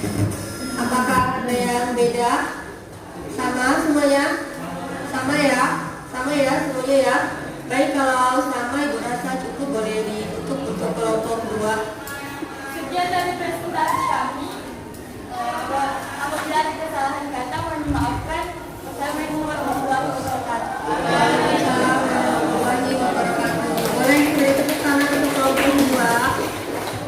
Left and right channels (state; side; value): identical; both; correlation 1.00